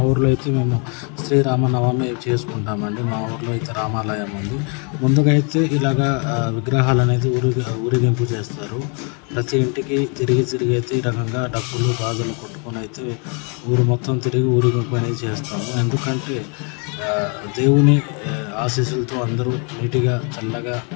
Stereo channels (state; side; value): quieter; right; 36.5 dB